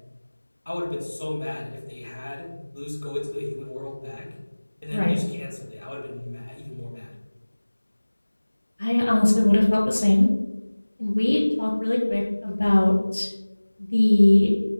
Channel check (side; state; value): both; inverted; correlation -1.00